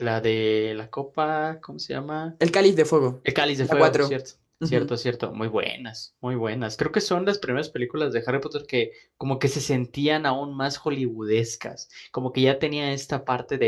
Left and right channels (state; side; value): identical; both; correlation 1.00